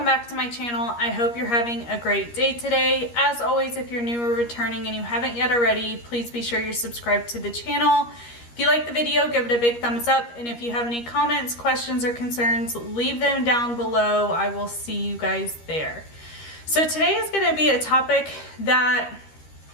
back to my channel. I hope you're having a great day today. As always, if you're new or returning and you haven't yet already, please be sure you're subscribed to the channel. If you like the video, give it a big thumbs up. And if you have any comments, questions, or concerns, leave them down below. I will see you guys there. So today is going to be a topic that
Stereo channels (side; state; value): right; late; 13 ms